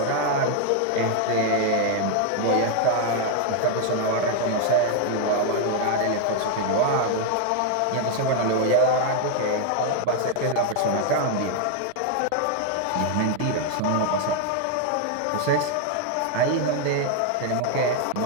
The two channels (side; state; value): both; different; correlation 0.00